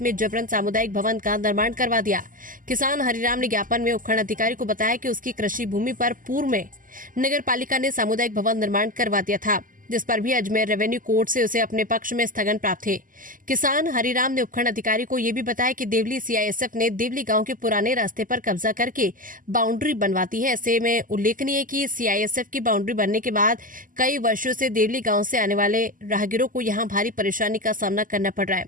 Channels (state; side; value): late; left; 0.39 ms